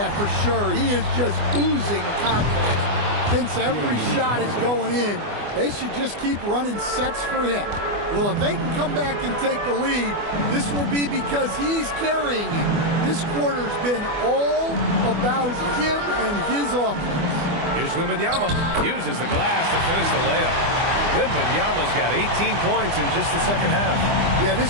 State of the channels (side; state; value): left; late; 24 ms